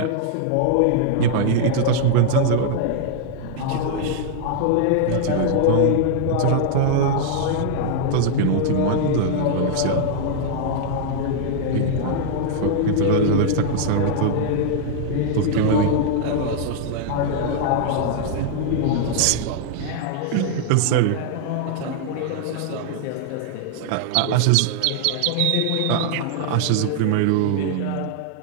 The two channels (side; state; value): both; different; correlation -0.01